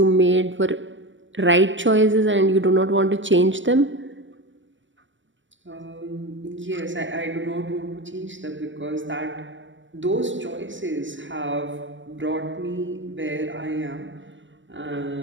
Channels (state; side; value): late; left; 0.55 ms